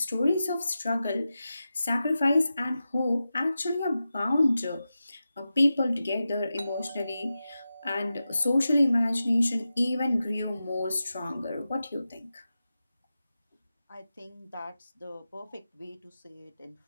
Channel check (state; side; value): inverted; both; correlation -0.92